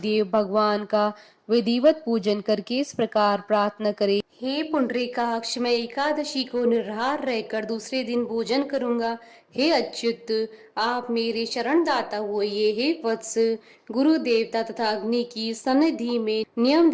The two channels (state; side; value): identical; both; correlation 1.00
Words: भगवान का विधिवत पूजन करके इस प्रकार प्रार्थना करें, हे पुंडरीकाक्ष, मैं एकादशी को निराहार रहकर दूसरे दिन भोजन करूंगा। हे अच्युत, आप मेरे शरण दाता होइए। हे वत्स, गुरु देवता तथा अग्नि की सन्निधि में नियम